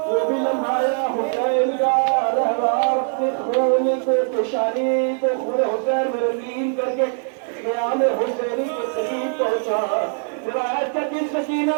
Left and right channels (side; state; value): left; silent; 58 dB below the other